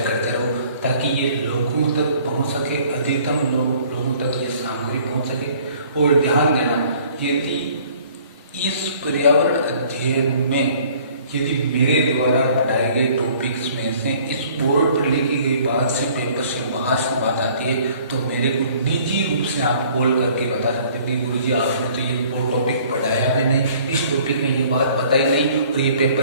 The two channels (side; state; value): both; inverted; correlation -0.55